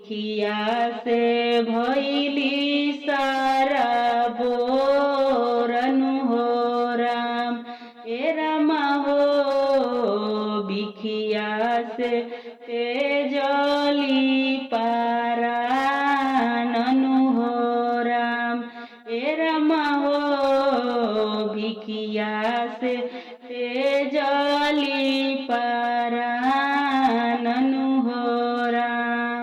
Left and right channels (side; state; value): both; identical; correlation 1.00